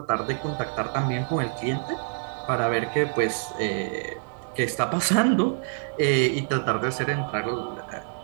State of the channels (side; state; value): left; silent; digital silence